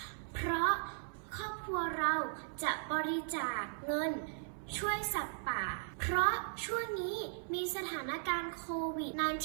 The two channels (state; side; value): silent; left; 53 dB below the other